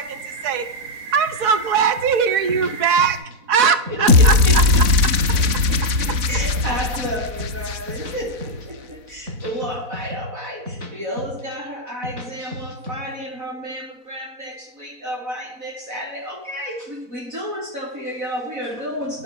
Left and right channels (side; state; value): left; late; 4.1 ms